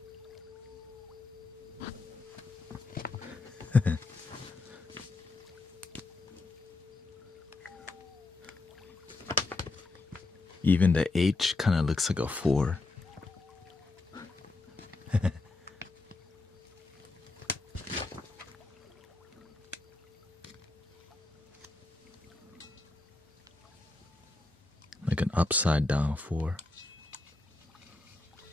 Even the H kind of looks like a 4. Like an upside down 4.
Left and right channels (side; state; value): right; quieter; 3.2 dB